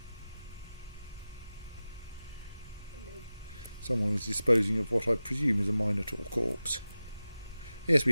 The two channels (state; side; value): inverted; both; correlation -0.95